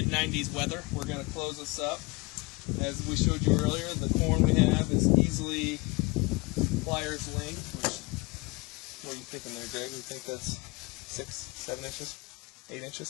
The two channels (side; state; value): right; quieter; 26.4 dB